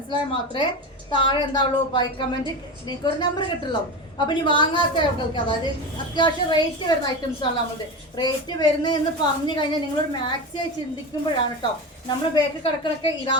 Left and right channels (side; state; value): both; normal; correlation 0.23